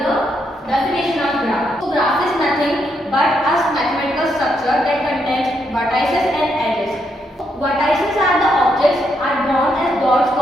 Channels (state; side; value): normal; both; correlation 0.78